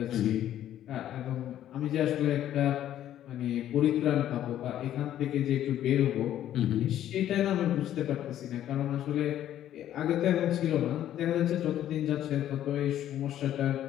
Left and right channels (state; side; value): quieter; right; 11.7 dB